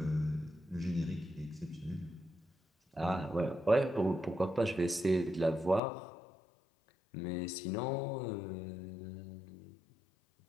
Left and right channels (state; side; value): drops out; right; at 5.8 s